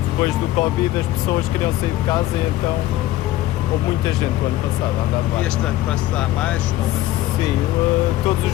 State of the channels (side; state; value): right; quieter; 15.2 dB